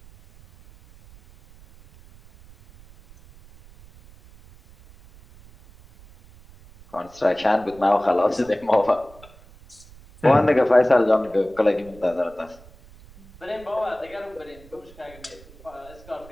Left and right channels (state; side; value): noise; right; rumble, 23 dB below the sound